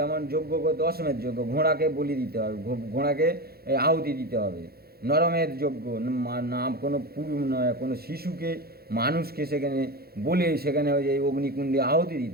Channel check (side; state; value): left; late; 0.45 ms